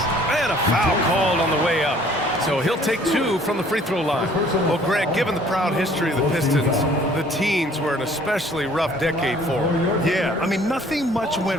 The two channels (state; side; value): normal; both; correlation 0.56